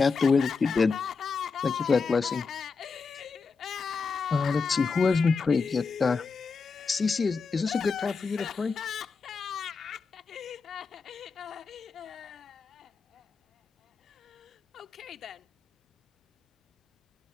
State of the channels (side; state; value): right; quieter; 4.9 dB